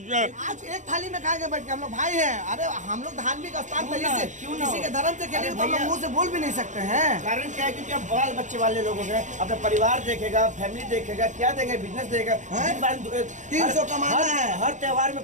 एक थाली में खाएंगे बैठ के, हम लोग भाई हैं। अरे हम लोग धार्मिक स्थान पर किसी के धर्म से खेलेंगे तो हम लोग मुंह से बोल भी नहीं सकते हैं। कारण क्या है? क्योंकि अब बाल बच्चे वाले लोगों के अपना परिवार देखेगा, फैमिली देखेगा, क्या देखेगा, बिजनेस देखेगा। 300 कमाना है। हर त्योहार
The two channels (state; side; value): late; left; 0.35 ms